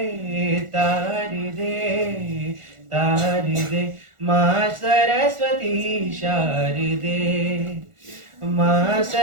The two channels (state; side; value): late; left; 1.4 ms